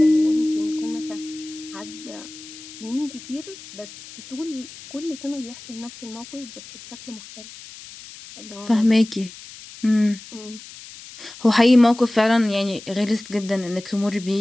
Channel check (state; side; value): noise; left; hiss, 16 dB below the sound